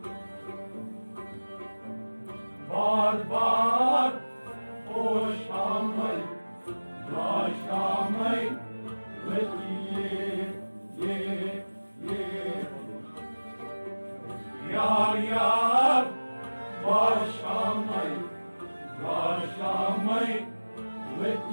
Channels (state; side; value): inverted; both; correlation -1.00